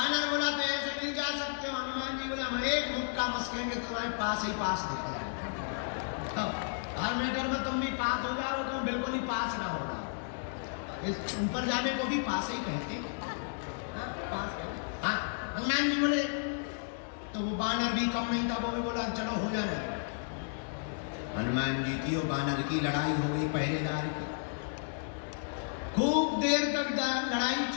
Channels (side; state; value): right; silent; digital silence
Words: बोला तो ऐसे नहीं जा सकते हो। हनुमान जी बोला हम एक मुक्का मस्केंगे, तुम्हारे पास ही पास दिख रहा है। हर मैटर में तुम भी पास हो जाओ, तुम बिल्कुल ही पास ना होगा। इस ऊपर जाने को भी पास ही कहते। हाँ, हनुमान जी बोले तो वो बानर भी कम नहीं था, वो बोला चलो हो जाना। हनुमान जी की और बानर की लड़ाई हो गई पहरेदार की। खूब देर तक लड़ाई